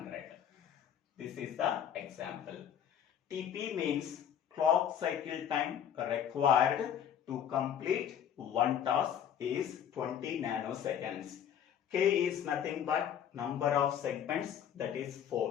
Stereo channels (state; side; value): quieter; right; 9.2 dB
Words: This is the example. Tp means clock cycle time required to complete one task is 20 nanoseconds. K is nothing but number of segments, that is